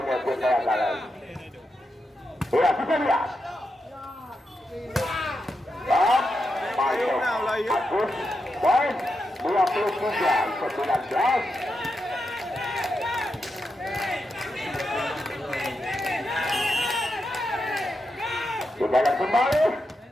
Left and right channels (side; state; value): both; normal; correlation 0.86